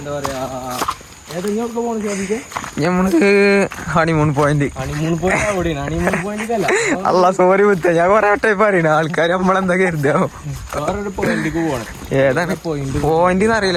പറയാ ഏതെങ്കിലും പോണ സാധിക്കാം. നമുക്ക് ഹണിമൂൺ പോയിന്റ് അവിടെയാണ്. ഹണിമൂൺ പോയിന്റ് അല്ല. അല്ല സോറി മുത്ത, ഞാൻ കൊറേ വട്ടം പറയണ ആൾക്കാർ നമ്മളെന്താ കരുതാ വേറൊരു പോയിന്റിക്ക് പോകണം. ഏതാണ് പോയിന്റ്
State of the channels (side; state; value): both; identical; correlation 1.00